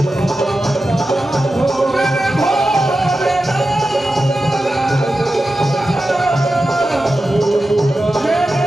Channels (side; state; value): both; normal; correlation 0.92